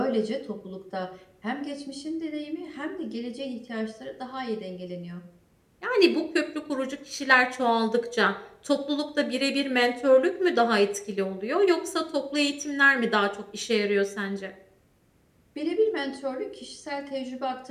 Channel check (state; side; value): identical; both; correlation 1.00